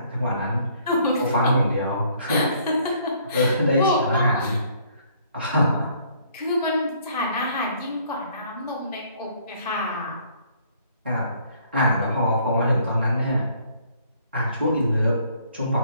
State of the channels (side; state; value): both; inverted; correlation -0.62